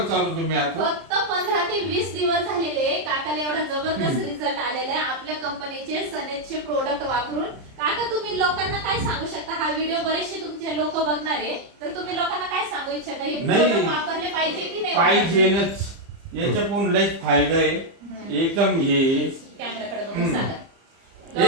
चालू तुम्ही आता। फक्त 15 ते 20 दिवस झालेले काकाला एवढा जबरदस्त रिझल्ट आलेला आहे आपल्या कंपनीचे सनेजचे प्रोडक्ट वापरून। काका तुम्ही लोकांना काय सांगू शकता? हा व्हिडिओ बरेचसे तुमचे लोक बघणार आहे, तर तुम्ही लोकांना काय सांगू इच्छिता? हे प्रोडक्ट वापरले पाहिजे की नाही? पाहिजेच, याच्यातून लय फायदा आहे एकदम। हे कॅमेराकडे बघून सांगा।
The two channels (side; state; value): left; late; 30 ms